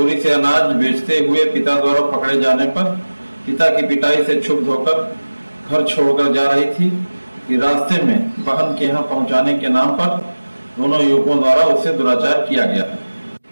से अनाज बेचते हुए पिता द्वारा पकड़े जाने पर पिता की पिटाई से क्षुब्ध होकर घर छोड़कर जा रही थी कि रास्ते में बहन के यहाँ पहुंचाने के नाम पर दोनों युवकों द्वारा उससे दुराचार किया गया है।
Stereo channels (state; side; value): inverted; both; correlation -1.00